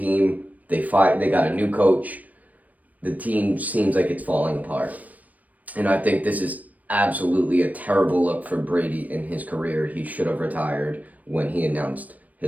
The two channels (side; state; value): left; late; 0.075 ms